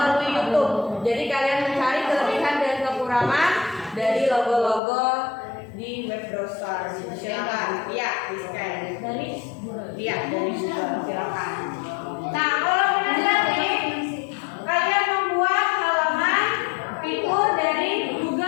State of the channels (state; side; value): drops out; right; at 4.8 s